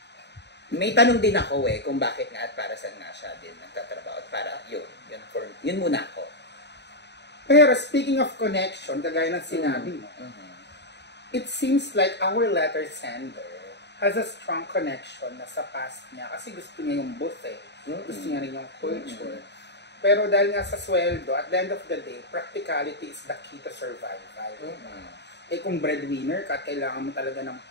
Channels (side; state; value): right; late; 0.50 ms